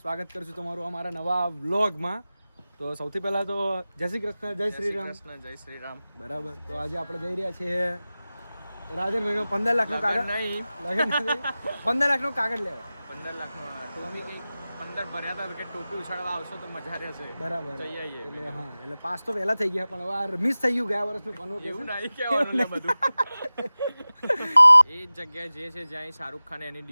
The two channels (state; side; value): inverted; both; correlation -0.97